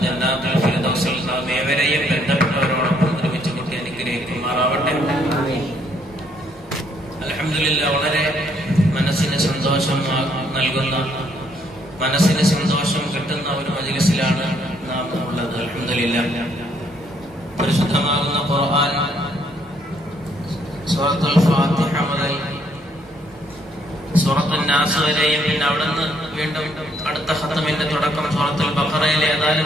ജന്നാത്തുൽ ഫിർദൗസിൽ നാം ഏവരെയും ബന്ധപ്പെട്ടവരോടൊപ്പം ഒരുമിച്ച് കൂട്ടി അനുഗ്രഹിക്കുമാറാവട്ടെ. അൽഹംദുലില്ലാഹ് വളരെ മനസ്സിന് സന്തോഷം നൽകുന്ന, മനസ്സിന് സന്തോഷം കിട്ടുന്ന ഒരു മജ്ലിസിലാണ് നാം ഉള്ളത്. അൽഹംദുലില്ലാഹ് പരിശുദ്ധമാകുന്ന ഖുർആൻ സൂറത്തുൽ ഫാത്തിഹ മുതൽ സൂറത്തുൽ നാസ് വരെയും പിന്നെ അവിടുന്ന് വീണ്ടും അടുത്ത ഖത്മിന്റെ തുടക്കം സൂറത്തുൽ ബഖറയിലെ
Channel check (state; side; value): normal; both; correlation 0.69